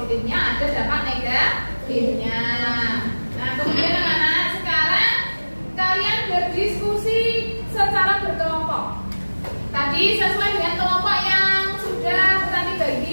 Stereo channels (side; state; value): both; inverted; correlation -1.00